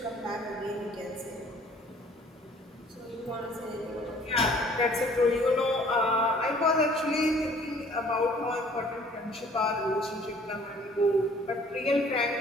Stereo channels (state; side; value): normal; both; correlation 0.55